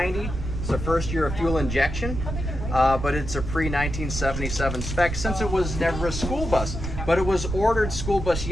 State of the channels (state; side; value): noise; right; rumble, 5 dB below the sound